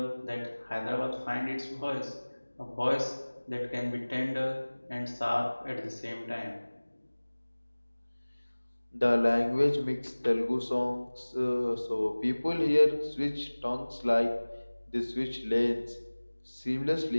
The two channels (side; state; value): both; inverted; correlation -1.00